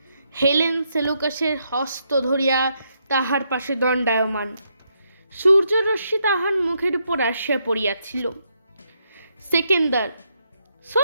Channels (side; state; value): both; inverted; correlation -0.78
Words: হেলেন সেলুকাসের হস্ত ধরিয়া তাহার পাশে দণ্ডায়মান। সূর্যরশ্মি তাহার মুখের উপর আসিয়া পড়িয়াছিল। সেকেন্দার: